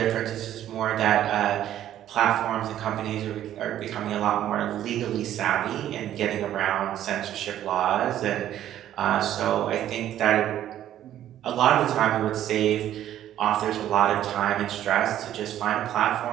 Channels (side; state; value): left; quieter; 11.8 dB